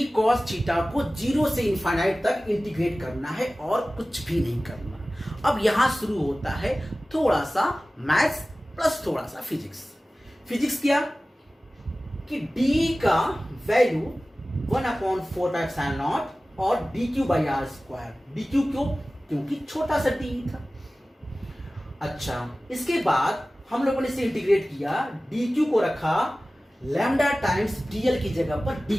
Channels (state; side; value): normal; both; correlation 0.97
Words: cos थीटा को 0 से इनफाइनाइट तक इंटीग्रेट करना है और कुछ भी नहीं करना। अब यहां शुरू होता है थोड़ा सा मैथ्स प्लस थोड़ा सा फिजिक्स। फिजिक्स क्या कि d का वैल्यू 1/4 और dq/r², dq क्यों, क्योंकि छोटा सा d था। अच्छा, इसके बाद हम लोगों ने इसे इंटीग्रेट किया, dq को रखा लैम्डा टाइम्स dl की जगह पर